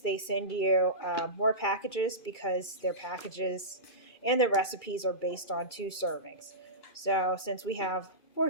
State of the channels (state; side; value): late; right; 2.3 ms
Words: they send you more packages because their packages and the recipes are based on 2 servings. So since we have 4